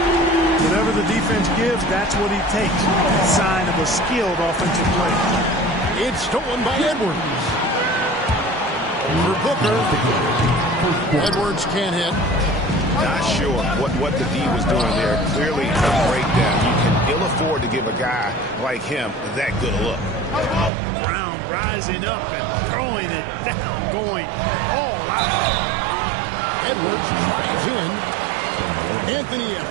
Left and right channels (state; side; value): drops out; left; at 20.7 s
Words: Whatever the defense gives, that's what he takes. Sign of a skilled offensive player. It's stolen by Edwards. For Booker. Edwards can't hit. Not sure what the D was doing there. Clearly a breakdown. You can ill afford to give a guy like him that good a look. Brown rising up and throwing it down, going all out. Edwards drives in. Anthony